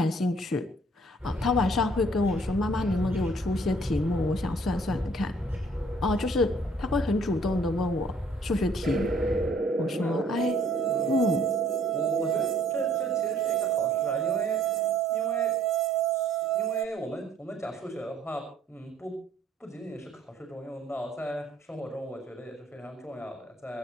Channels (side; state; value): both; normal; correlation 0.59